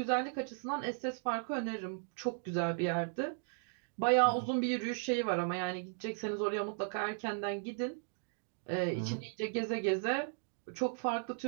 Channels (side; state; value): left; silent; digital silence